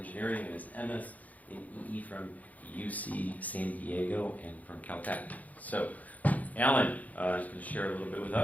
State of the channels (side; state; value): right; late; 0.076 ms